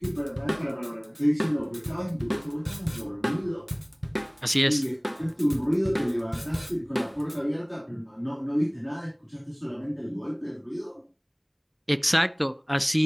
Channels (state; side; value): identical; both; correlation 1.00